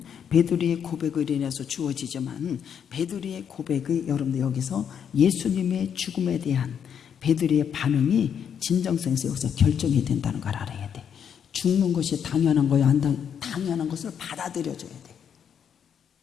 베드로의 고백을 인해서 주어지지만 베드로의 고백이 여러분들 여기서 예수님의 죽음에 대한 베드로의 반응이 진정성에서 여기서 결정이 된다는 걸 알아야 돼. 죽는 것이 당연한 거야 안 당연한 것을 받아들여줘야 돼.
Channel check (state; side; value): quieter; right; 8.1 dB